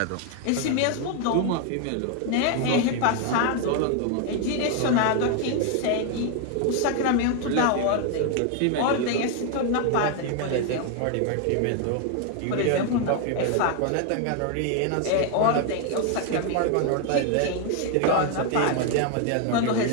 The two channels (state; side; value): different; both; correlation 0.01